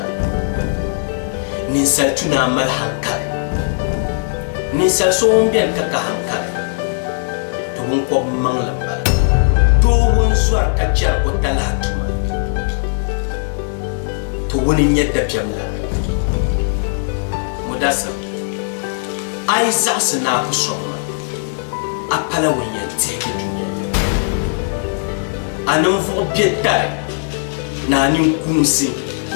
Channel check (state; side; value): silent; right; digital silence